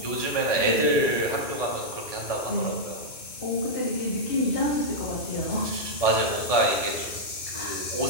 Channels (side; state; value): right; late; 2.6 ms